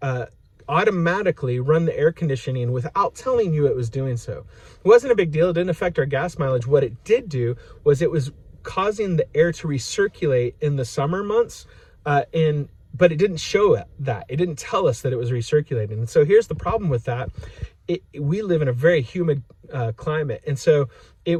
automatically run the air conditioning without telling you it was doing so. It wasn't a big deal. It didn't affect our gas mileage. What it did do was it was causing the air to recirculate in the summer months, but it didn't show that. It didn't tell us that it was recirculating. And so here's the problem with that. We live in a very humid climate, and so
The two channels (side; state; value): both; identical; correlation 1.00